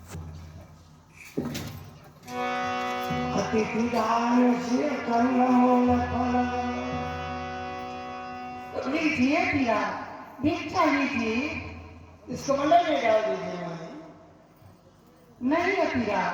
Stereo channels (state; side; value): identical; both; correlation 1.00